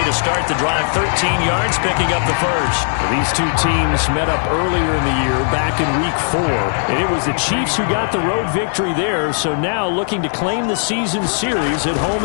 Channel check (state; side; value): silent; right; 68 dB below the other